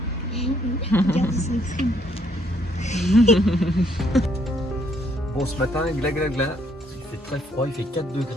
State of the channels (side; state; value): both; normal; correlation 0.69